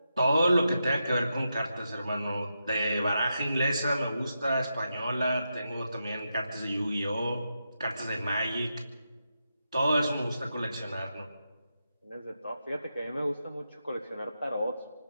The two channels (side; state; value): both; inverted; correlation -0.86